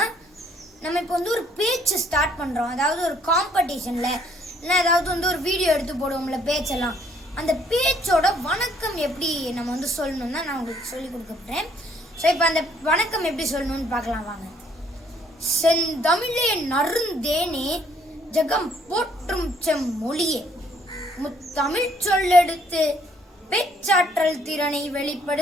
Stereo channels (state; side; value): normal; both; correlation 0.64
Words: நம்ம இப்போ ஒரு பேச்சு ஸ்டார்ட் பண்ணுறோம். அதாவது ஒரு காம்படிஷனில் இல்லை ஏதாவது ஒரு வீடியோ எடுத்து போடுவோம்ல பேச்செல்லாம், அந்த பேச்சோட வணக்கம் எப்படி நம்ம சொல்லணும் தான் நான் உங்களுக்கு சொல்லி கொடுக்க போகிறேன். ஸோ இப்போ அந்த வணக்கம் எப்படி சொல்லணும்னு பார்க்கலாம் வாங்க. செந்தமிழே நறுந்தேனே ஜகம் போற்றும் செம்மொழியே, முத்தமிழ் சொல்லெடுத்து பேச்சாற்றல் திறனை